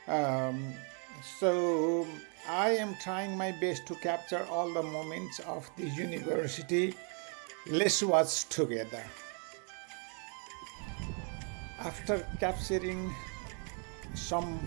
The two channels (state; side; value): quieter; left; 38.9 dB